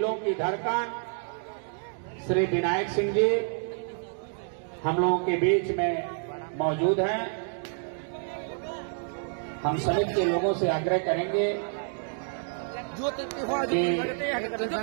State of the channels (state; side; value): silent; left; 59 dB below the other